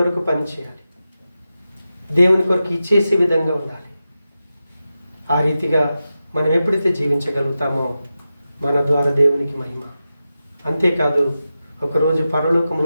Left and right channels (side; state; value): both; inverted; correlation -0.92